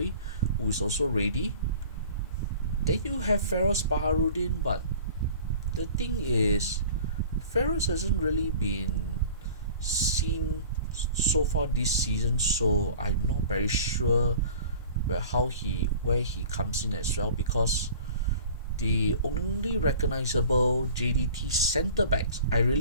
who is also ready. Then you have Feroz Baharudin, but the thing is, Feroz hasn't really been seen so far this season, so I'm not very sure where he comes in as well, because the only recognizable JDT centre backs,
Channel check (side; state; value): both; inverted; correlation -0.44